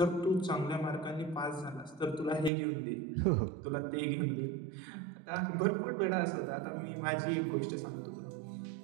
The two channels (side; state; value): left; drops out; at 2.5 s